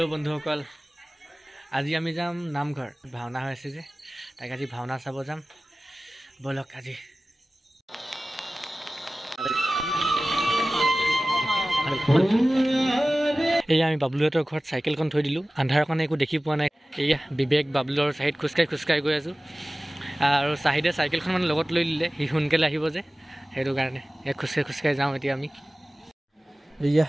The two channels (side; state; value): both; normal; correlation 0.97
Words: বন্ধুসকল আজি আমি যাম নামঘৰ ভাওনা হৈছে যে তাক আজি ভাওনা চাব যাম বলক আজি এয়া আমি বাবলুহঁতৰ ঘৰত চাইকেলখন থৈ দিলোঁ আন্ধাৰ কাৰণে একো দেখি পোৱা নাই এয়া বিবেক বাবলুৰ চাইড খোজকাঢ়ি গৈ আছোঁ আৰু চাহিদে চাইকেলখন মানে লগত লৈ দিলে সি সোনকালে আহিব যে সেইটো কাৰণে এক খোজকাঢ়ি যাওঁ এতিয়া এয়া